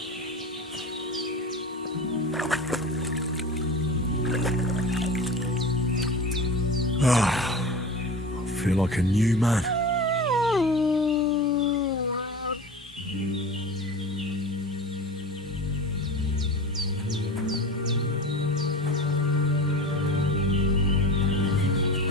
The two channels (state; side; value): normal; both; correlation 0.33